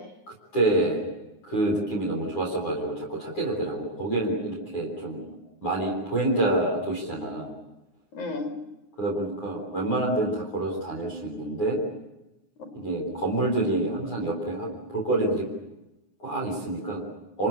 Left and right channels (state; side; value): late; right; 9.6 ms